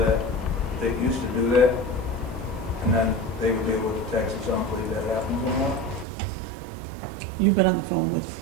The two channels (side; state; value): left; drops out; at 6.1 s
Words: they used to do that, and then they would be able to tax us on, believe that happens anymore. You've been on the phone with.